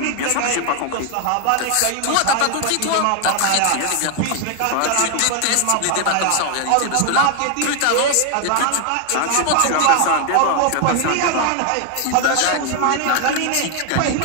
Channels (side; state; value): both; different; correlation 0.00